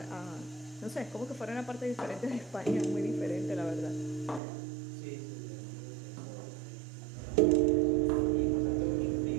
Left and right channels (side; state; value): left; drops out; at 4.4 s